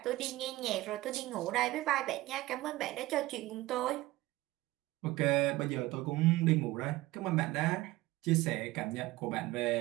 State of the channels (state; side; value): quieter; left; 18.2 dB